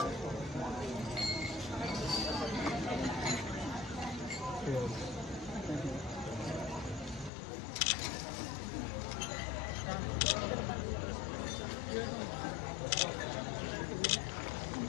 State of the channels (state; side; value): drops out; right; at 7.3 s